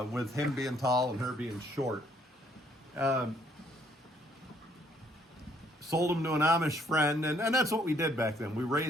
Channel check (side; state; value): both; normal; correlation 0.66